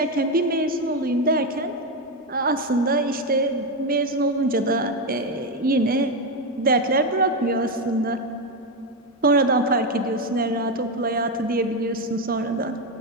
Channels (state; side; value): normal; both; correlation 0.09